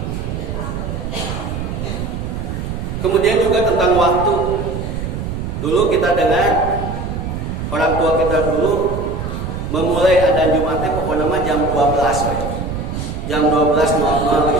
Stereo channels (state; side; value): noise; right; rumble, 5 dB below the sound